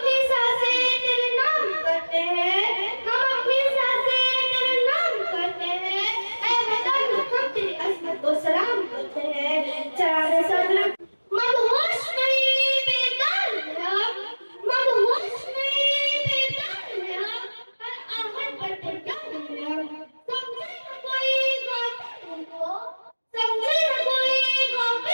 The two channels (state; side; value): inverted; both; correlation -1.00